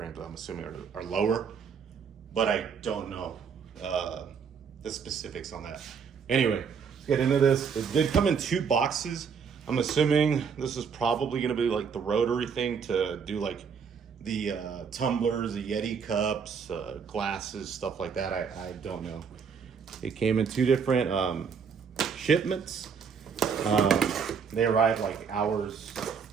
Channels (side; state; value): left; quieter; 6.3 dB